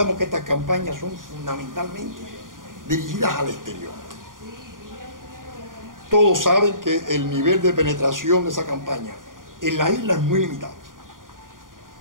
que estas campañas son fundamentalmente dirigidas al exterior. Todos saben que el nivel de penetración de esa campaña en la isla es muy limitado.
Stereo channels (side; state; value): left; late; 0.90 ms